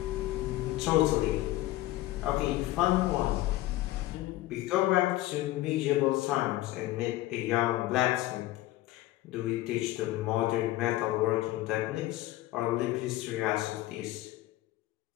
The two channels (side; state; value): right; quieter; 16.4 dB